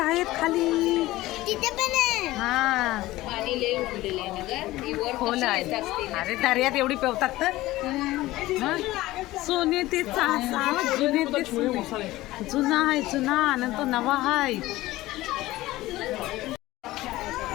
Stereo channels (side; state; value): right; quieter; 17.4 dB